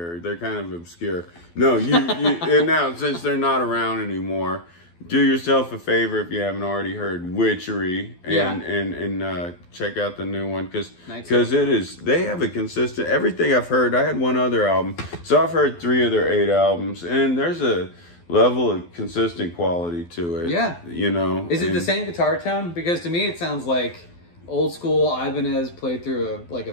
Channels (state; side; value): late; right; 12 ms